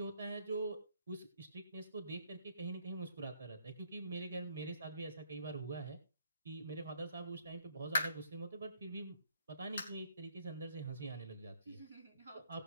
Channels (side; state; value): both; inverted; correlation -0.68